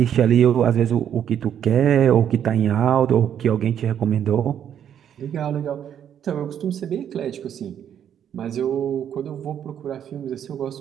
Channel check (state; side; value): quieter; left; 9.3 dB